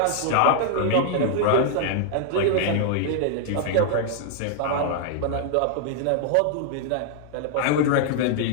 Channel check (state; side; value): different; both; correlation 0.00